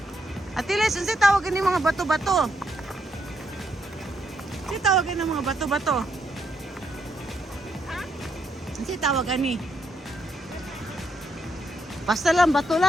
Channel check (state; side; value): normal; both; correlation 0.77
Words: Atiles, ano sa'y tawag yung mga bato-bato? Ano sa'y tawag yung mga bato-bato? Ano sa'y tawag ni? Basta lang, bato